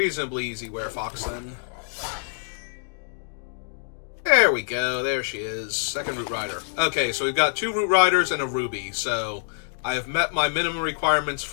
easy Werefox then. There we go, there she is. Second Root Rider. Okay, so we've got 2 Root Riders and a Ruby, so I have met my minimum requirements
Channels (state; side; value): silent; right; digital silence